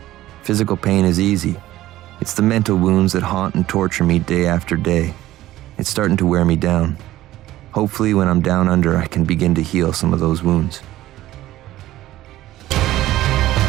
Physical pain is easy. It's the mental wounds that haunt and torture me day after day. It's starting to wear me down. Hopefully, when I'm down under, I can begin to heal some of those wounds.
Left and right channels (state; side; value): quieter; left; 15.1 dB